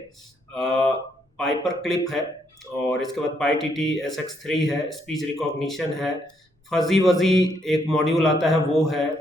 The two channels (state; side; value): normal; both; correlation 0.74